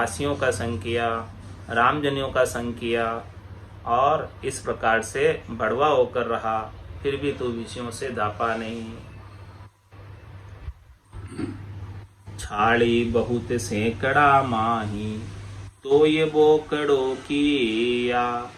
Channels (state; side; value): identical; both; correlation 1.00